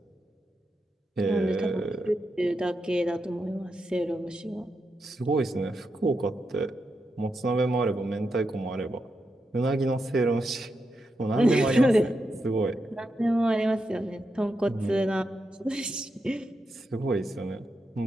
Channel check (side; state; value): both; normal; correlation 0.85